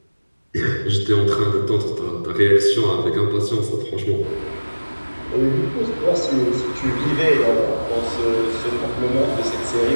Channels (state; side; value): inverted; both; correlation -1.00